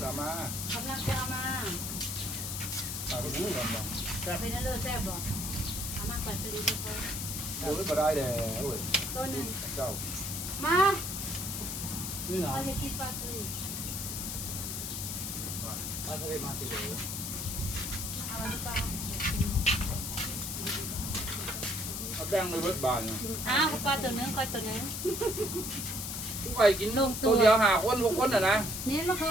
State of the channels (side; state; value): left; noise; hiss, 4 dB below the sound